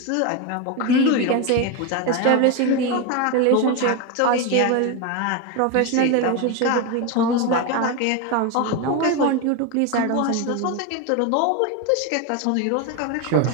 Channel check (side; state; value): both; different; correlation 0.02